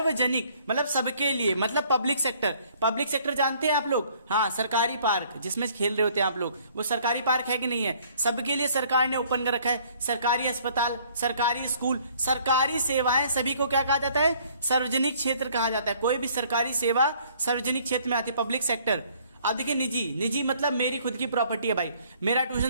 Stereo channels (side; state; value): both; inverted; correlation -0.60